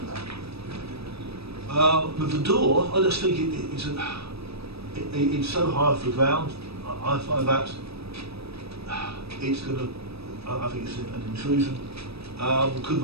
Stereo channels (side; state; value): left; late; 0.78 ms